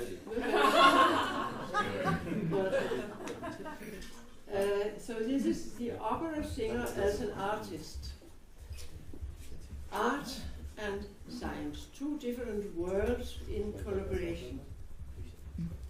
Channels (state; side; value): identical; both; correlation 1.00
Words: So this is the opera singer as an artist. Art and science, two different worlds in collaboration.